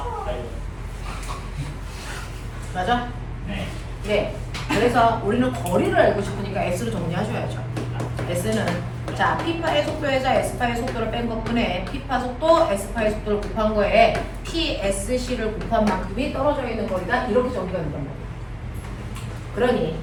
맞아? 그래서 우리는 거리를 알고 싶으니까 S로 정리하셔야죠. S는 자, P파의 속도에서 S파의 속도를 뺀 것뿐에 P파 속도, S파의 속도를 곱한 거에 PSC를 곱한 만큼이 떨어져 있는 거리다. 이렇게 정리가 된단 말이에요. 그러니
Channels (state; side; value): identical; both; correlation 1.00